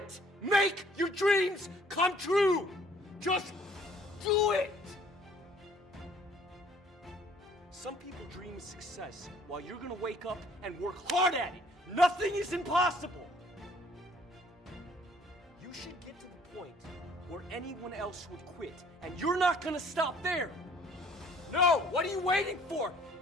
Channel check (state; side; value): normal; both; correlation 0.58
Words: Make your dreams come true! Just do it! Some people dream of success while you're gonna wake up and work hard at it. Nothing is impossible. You should get to the point where anyone else would quit, and you're not gonna stop there. No, what are you waiting for?